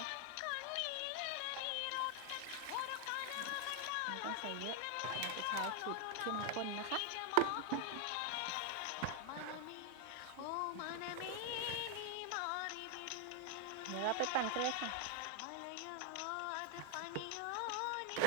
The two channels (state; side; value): different; both; correlation 0.00